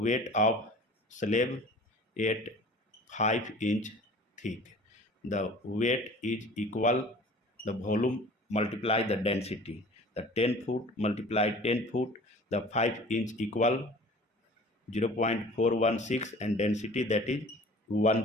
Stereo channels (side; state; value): both; normal; correlation 0.45